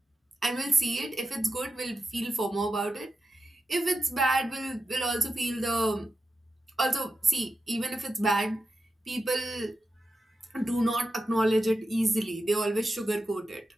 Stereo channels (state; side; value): normal; both; correlation 0.89